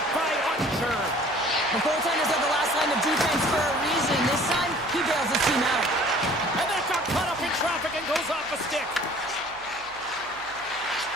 by Archer. The goaltenders are the last line of defense for a reason. This time, he bails his team out. And that got caught up in traffic and goes off the stick.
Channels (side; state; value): right; noise; hum, 26 dB below the sound